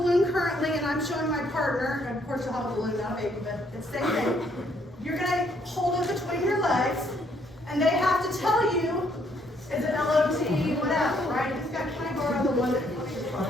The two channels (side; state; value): both; normal; correlation 0.69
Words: currently and I'm showing my partner, and of course you'll have a balloon, not a baby, but it's the same thing. You're gonna hold it between your legs and they have to tell you, is it LOT, whatever, right? Just got kind of borrow the one that